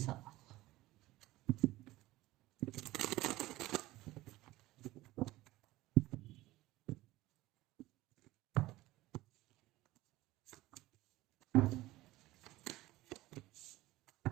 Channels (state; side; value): quieter; left; 17.8 dB